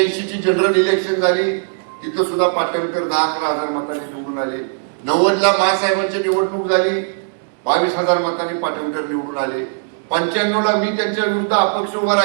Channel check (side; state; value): left; silent; digital silence